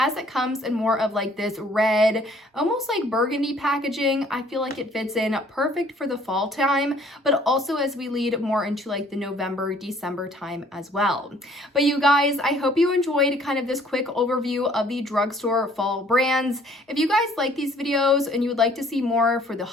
it comes in more of like this red, almost like burgundy packaging, I feel like it fits in perfect for the fall time, but also as we lead more into like the November, December time as well. But you guys, I hope you enjoyed kind of this quick overview of the drugstore fall brands. If you guys like these videos and you would like to see more for the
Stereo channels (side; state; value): both; normal; correlation 0.58